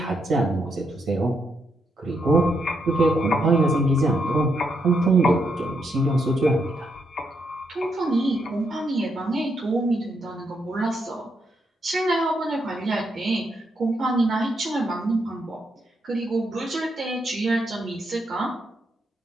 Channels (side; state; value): both; normal; correlation 0.79